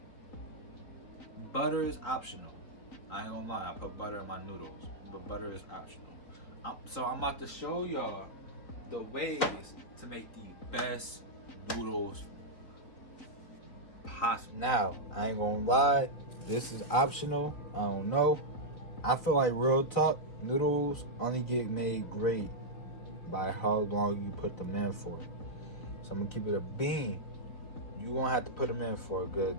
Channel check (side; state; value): right; late; 4.0 ms